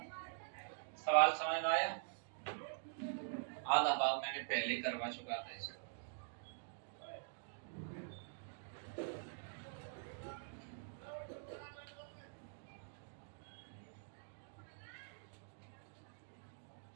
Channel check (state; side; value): silent; left; digital silence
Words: सवाल समझ में आया आधा भाग मैंने पहले करवा चुका था इसका